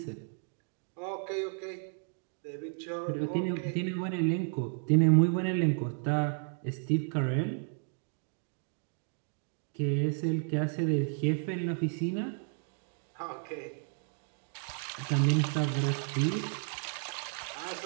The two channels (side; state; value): left; silent; 56 dB below the other